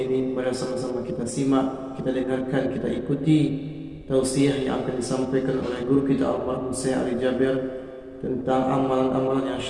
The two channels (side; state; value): both; identical; correlation 1.00